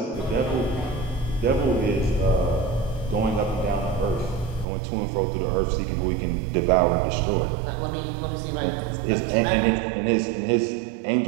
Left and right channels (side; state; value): left; drops out; at 4.7 s